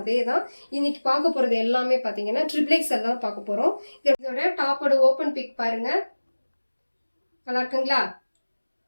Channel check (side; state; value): both; inverted; correlation -1.00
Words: அதே தான். இன்னைக்கு பார்க்க போகிறது எல்லாமே பார்த்தீங்கன்னா ட்ரிபிள் எக்ஸ்எல் தான் பார்க்க போகிறோம். இதோட டாப்போட ஓப்பன் பிக் பாருங்கள், நல்லா இருக்குங்களா?